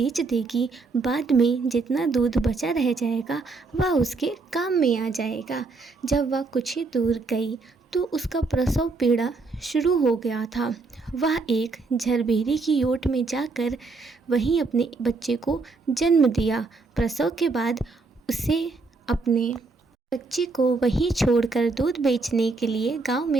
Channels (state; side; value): quieter; left; 3.9 dB